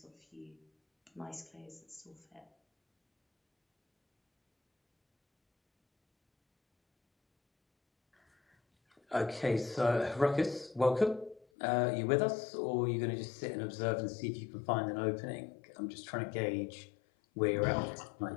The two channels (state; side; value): drops out; right; at 11.5 s